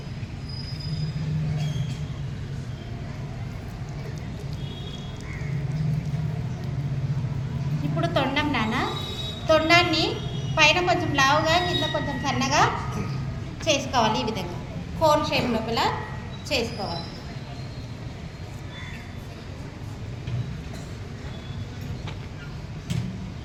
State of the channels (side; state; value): both; identical; correlation 1.00